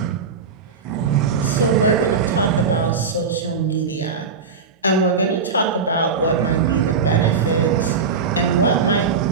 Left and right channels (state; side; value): quieter; left; 5.4 dB